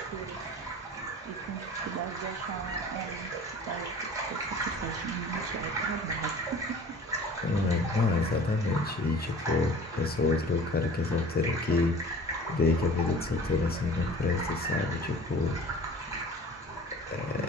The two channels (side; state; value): both; normal; correlation 0.44